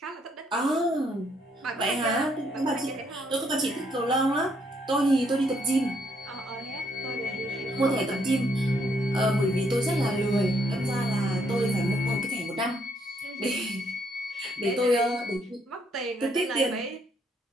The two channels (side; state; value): both; normal; correlation 0.71